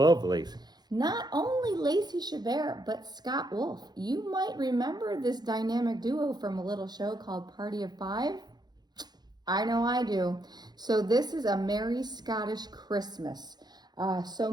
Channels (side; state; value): left; late; 0.20 ms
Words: Lacey. Not only Lacey Chabert, but Scott Wolf. You might remember this dynamic duo from a little show called Party of Five. I know I do. So this is a Merry Scottish Christmas. So